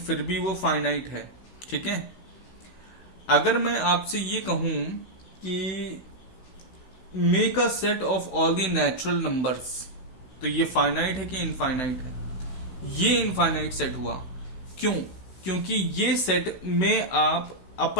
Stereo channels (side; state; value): right; late; 16 ms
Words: भी वो फाइनाइट है. ठीक है. अगर मैं आपसे ये कहूं कि make a set of all the natural numbers, तो ये फाइनाइट है कि इनफाइनाइट है, ये इनफाइनाइट सेट हुआ. क्यों? क्योंकि ये सेट में आप